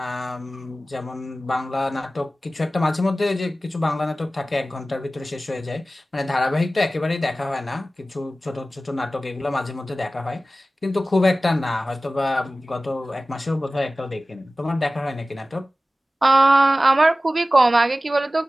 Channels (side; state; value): both; normal; correlation 0.96